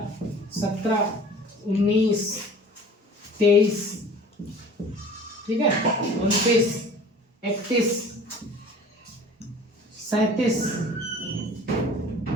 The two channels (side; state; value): both; normal; correlation 0.45